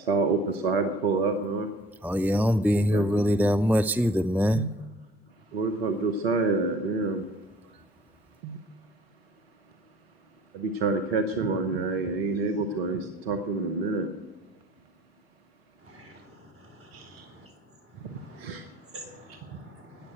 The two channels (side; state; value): both; normal; correlation 0.51